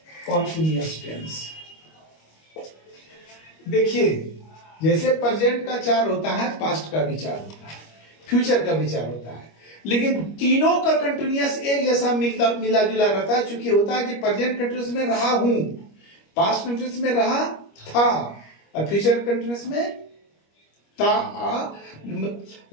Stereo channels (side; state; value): right; late; 25 ms